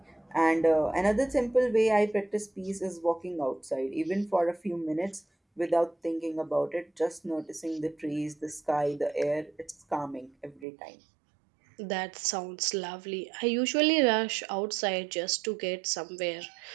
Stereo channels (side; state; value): left; drops out; at 10.7 s